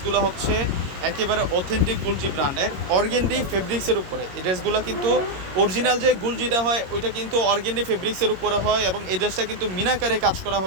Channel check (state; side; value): late; left; 22 ms